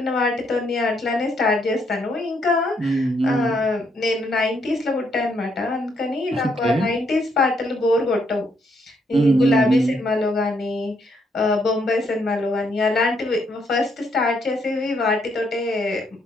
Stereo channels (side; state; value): both; normal; correlation 0.73